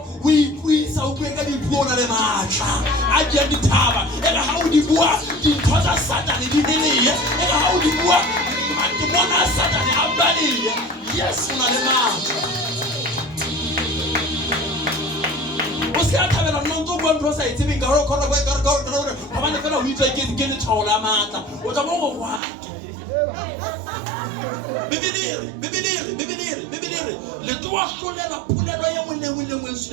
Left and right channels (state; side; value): drops out; left; at 22.4 s